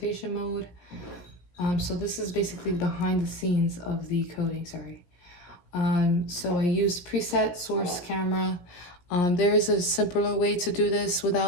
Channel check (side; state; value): right; late; 17 ms